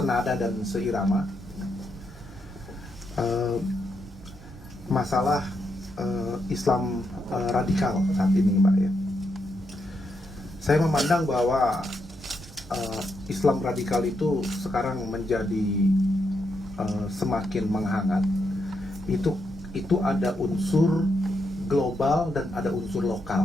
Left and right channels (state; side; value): normal; both; correlation 0.81